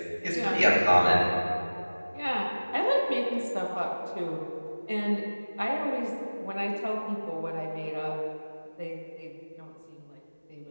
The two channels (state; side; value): inverted; both; correlation -1.00